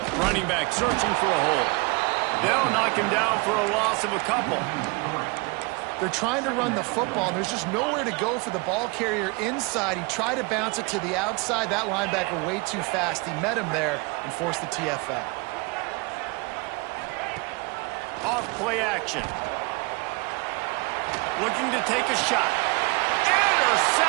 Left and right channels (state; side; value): quieter; left; 27.9 dB